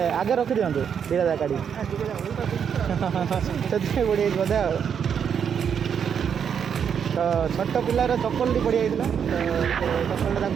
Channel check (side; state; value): left; quieter; 7.6 dB